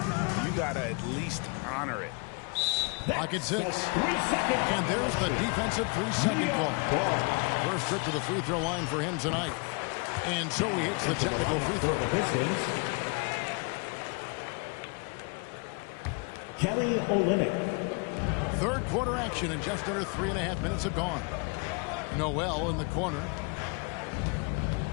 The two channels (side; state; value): right; quieter; 33.1 dB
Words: you got to at least honor it. Clock at 6. And there's the defensive 3-second call. First trip to the free throw line for him tonight. And so he hits the technical free throw. Kelly Olynyk. Third quarter action, and just under 3.5 minutes have gone. Noel in the corner.